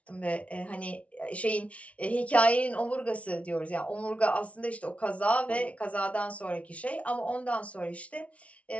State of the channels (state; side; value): late; right; 0.064 ms